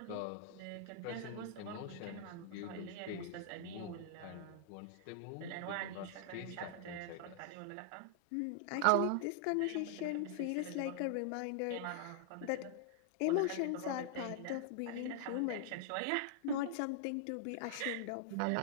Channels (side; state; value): both; different; correlation -0.01